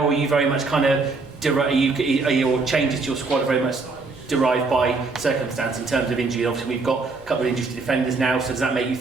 are you very much kind of, are your changes to your squad are very much derived by circumstance in terms of injury? Obviously we've got a couple of injuries to defenders now, so does that make you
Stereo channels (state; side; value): quieter; left; 3.9 dB